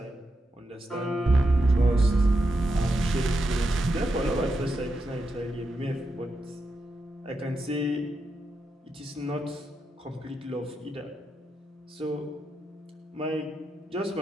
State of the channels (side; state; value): both; normal; correlation 0.86